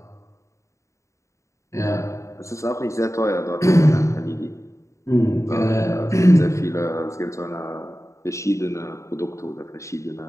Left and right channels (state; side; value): late; right; 0.14 ms